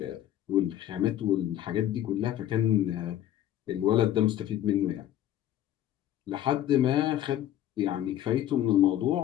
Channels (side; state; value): right; quieter; 12.0 dB